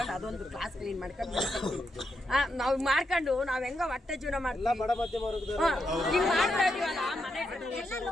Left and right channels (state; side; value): normal; both; correlation 0.83